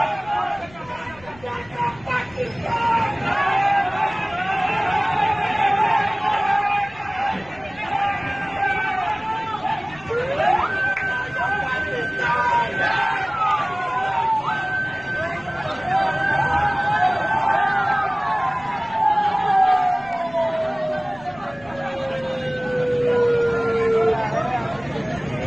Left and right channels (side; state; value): left; noise; rumble, 23 dB below the sound